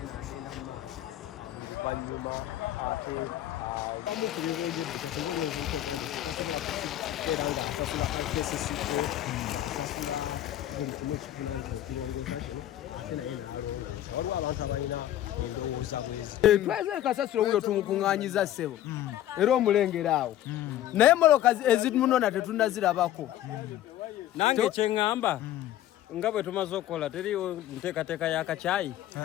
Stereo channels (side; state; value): right; quieter; 12.8 dB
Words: tweze kasasiro wuyo tumukuŋŋaanyiza ssebo era omulengera awo naye moloka ezimunona tetunazirabako nange kyeŋŋamba nga bwe tumaze okukola teriwo nteekateeka y'akacaayi